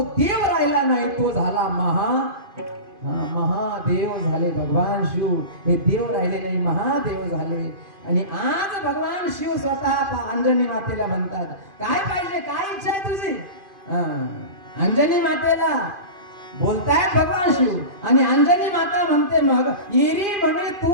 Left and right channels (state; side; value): late; left; 2.5 ms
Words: देव राहिला नाही, तो झाला महादेव झाले. भगवान शिव हे देव राहिले नाही, महादेव झाले. आणि आज भगवान शिव स्वतः अंजनी मातेला म्हणतात, काय पाहिजे, काय इच्छा आहे तुझी? अंजनी मातेला बोलतायत भगवान शिव आणि अंजनी माता म्हणते, मग येरी म्हणे